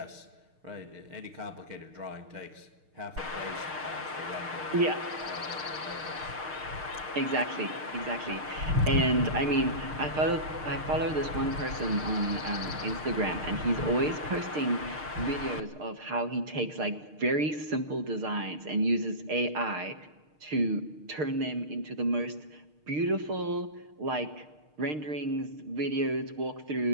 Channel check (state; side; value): late; left; 6.6 ms